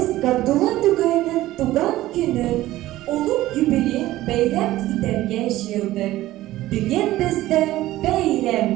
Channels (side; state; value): left; quieter; 15.8 dB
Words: Gabdullah Tugay'ın tugan günü, ulug yubiley bayram iterge şiirdik. Bugün bizde bayram.